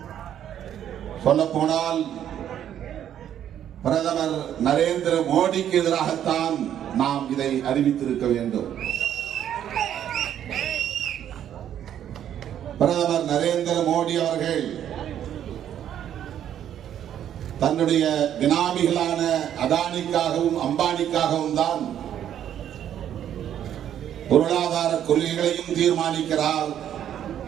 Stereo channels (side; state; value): left; quieter; 10.3 dB